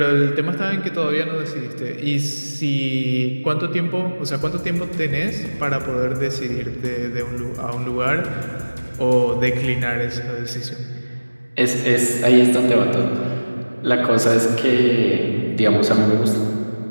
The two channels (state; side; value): inverted; both; correlation -1.00